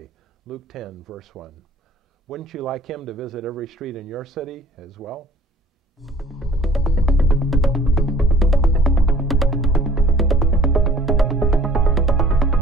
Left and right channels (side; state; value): both; normal; correlation 0.53